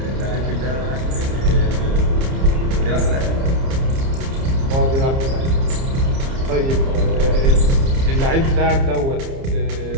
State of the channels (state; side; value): late; left; 30 ms